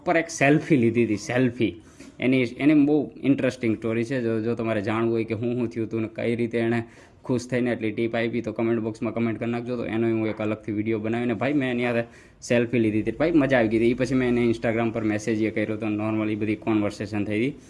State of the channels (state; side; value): identical; both; correlation 1.00